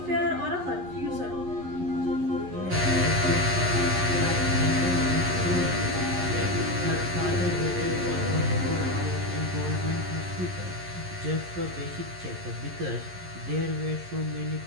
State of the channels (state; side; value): late; left; 11 ms